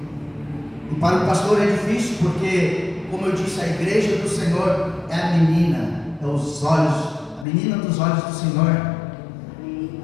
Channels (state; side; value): drops out; right; at 7.5 s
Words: E para o pastor é difícil porque, como eu disse, a igreja do Senhor é a menina, é os olhos, a menina dos olhos do Senhor.